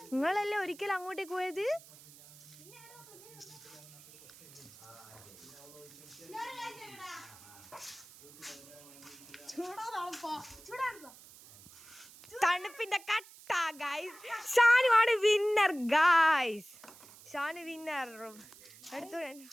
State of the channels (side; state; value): right; noise; hiss, 20 dB below the sound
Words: നിങ്ങളല്ലേ ഒരിക്കലും അങ്ങോട്ടേക്ക് പോയത്? തണുപ്പിന്റെ കട്ട ഗൈസ്. ഷാനുവാണ് വിന്നർ ഗൈസ്. ഷാനു വിന്നർ. എടുത്തു